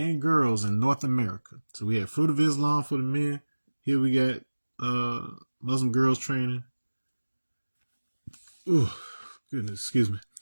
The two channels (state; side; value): inverted; both; correlation -1.00